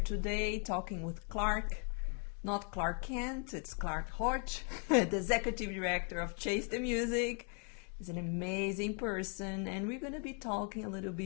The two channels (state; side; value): quieter; right; 38.6 dB